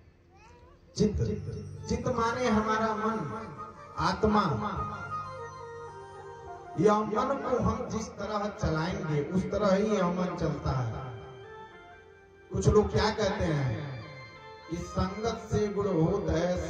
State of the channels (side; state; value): both; identical; correlation 1.00